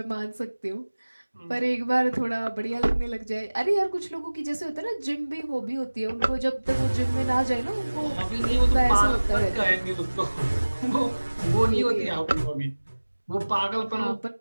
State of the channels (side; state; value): both; inverted; correlation -1.00